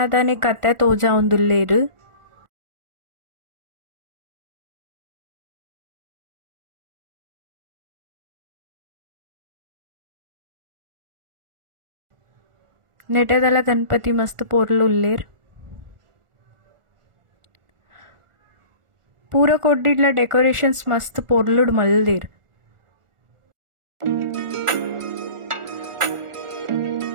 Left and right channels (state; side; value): late; left; 1.4 ms